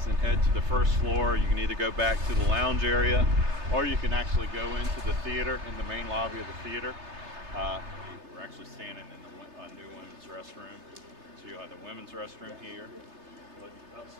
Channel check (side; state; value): left; late; 3.3 ms